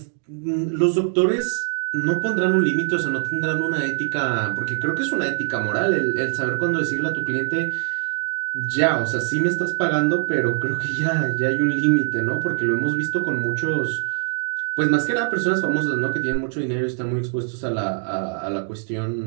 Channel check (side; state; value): left; silent; digital silence